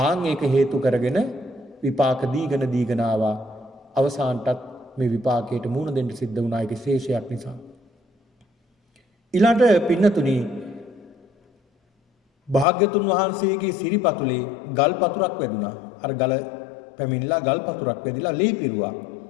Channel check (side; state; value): right; drops out; at 12.7 s